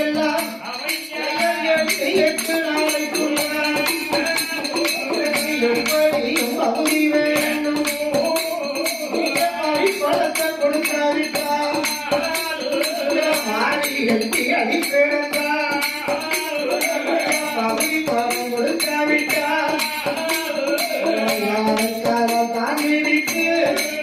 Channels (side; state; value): both; identical; correlation 1.00